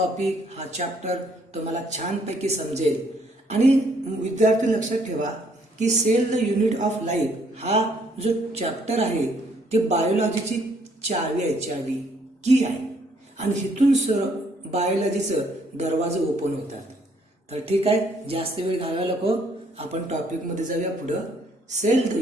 हा चॅप्टर तुम्हाला छानपैकी समजेल. आणि विद्यार्थी लक्षात ठेवा की cell the unit of life हा जो चॅप्टर आहे ते बायोलॉजीची चावी आहे, चावी की आहे. आणि इथून बायोलॉजीचं दरवाजे ओपन होतात. तर ठीक आहे, जास्त वेळ घालवायला नको, आपण टॉपिक मध्ये जाऊया पुढं. Cell the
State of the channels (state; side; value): normal; both; correlation 0.67